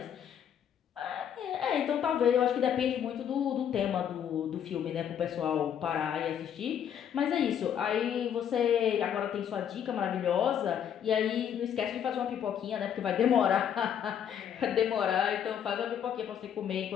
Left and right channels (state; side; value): quieter; right; 9.0 dB